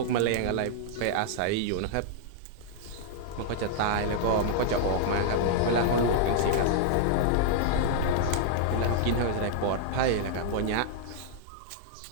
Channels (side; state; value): both; different; correlation -0.01